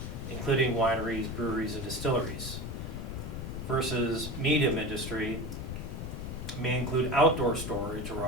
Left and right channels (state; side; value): noise; left; rumble, 6 dB below the sound